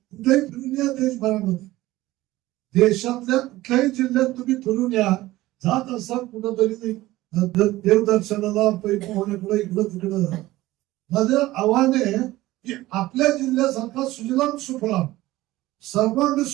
फिरून या देशभरामध्ये, देशातल्या कुठल्याही जिल्ह्यात तुम्ही फिरून या. जात असाल कुठंतरी देवदर्शनाला पोहण्याकडे इकडं तिकडं, माझं आव्हान आहे की आपल्या जिल्ह्यासारखा सुजलाम सुफलाम सर्वांग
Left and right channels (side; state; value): left; quieter; 17.2 dB